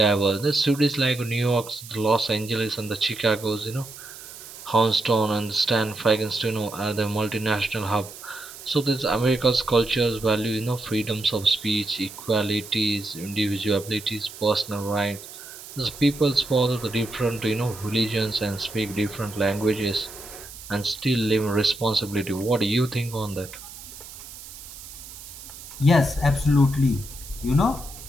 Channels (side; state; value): right; noise; hiss, 15 dB below the sound